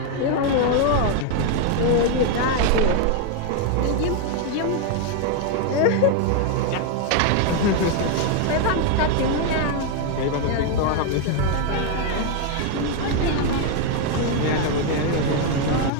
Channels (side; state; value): both; different; correlation 0.01